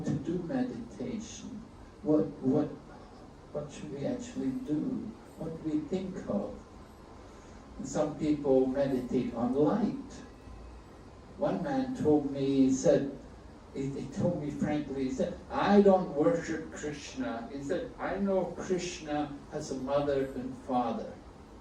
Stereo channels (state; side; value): identical; both; correlation 1.00